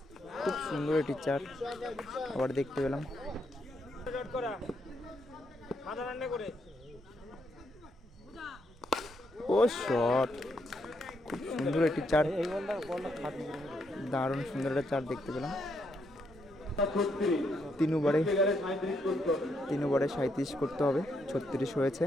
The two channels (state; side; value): normal; both; correlation 0.77